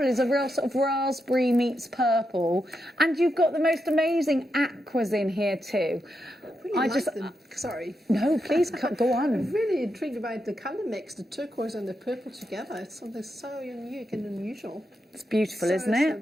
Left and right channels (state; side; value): normal; both; correlation 0.85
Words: is a real sort of raspberry meets purple. And you've got the most amazing aquas in here too. I like them. Sorry. No, please go on. I'm really intrigued about the colour mix, the turquoise and the purple together. It's something so unique and unusual. It's beautiful, isn't it? So